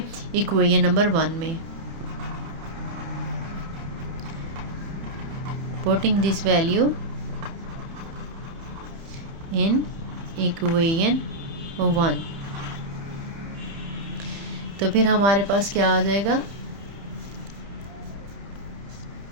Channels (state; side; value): late; left; 30 ms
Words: इक्वेशन नंबर 1 में। Putting this value in equation 1, तो फिर हमारे पास क्या आ जाएगा,